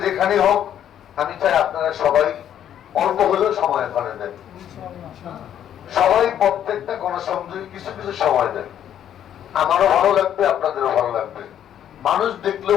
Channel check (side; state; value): right; quieter; 10.1 dB